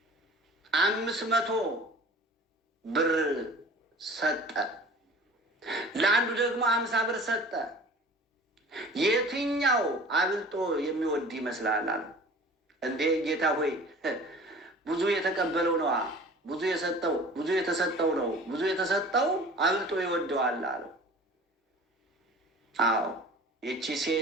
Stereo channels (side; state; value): both; normal; correlation 0.44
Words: 500 ብር ሰጠ፣ ለአንዱ ደግሞ 50 ብር ሰጠ። የትኛው አብልጦ የሚወድ ይመስላል አሉ። እንዴ ጌታ ሆይ ብዙ የተቀበለው ነዋ፣ ብዙ የሰጠው ብዙ የተሰጠው ነው፣ ብዙ የተሰጠው አብልጦ ይወደዋል አለው። አዎ ይቺ